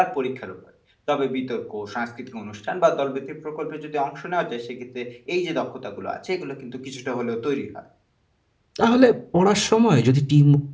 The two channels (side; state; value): both; identical; correlation 1.00